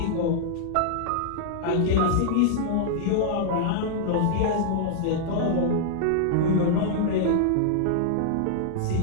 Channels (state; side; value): different; both; correlation -0.01